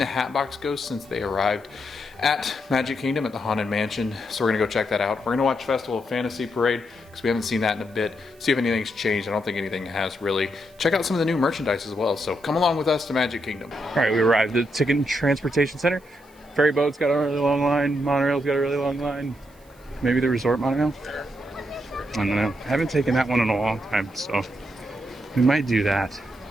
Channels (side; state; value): right; noise; hiss, 30 dB below the sound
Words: Hatbox Ghost since they arrived at Magic Kingdom at the Haunted Mansion, so we're gonna go check that out. We're gonna watch Festival of Fantasy Parade because we haven't seen that in a bit. See if anything's changed. I don't think anything has really. Check out some of the new merchandise as well. So come along with us to Magic Kingdom. All right, we arrived at the Ticket and Transportation Center. Ferry boat's got a really long line. Monorail's got a really long line. Maybe the resort monorail. I don't know. I haven't taken that one in a long time, so we might do that.